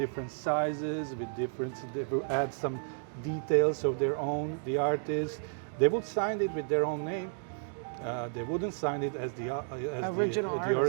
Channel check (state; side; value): silent; left; digital silence